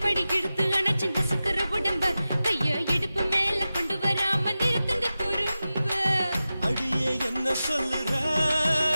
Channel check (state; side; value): inverted; both; correlation -0.94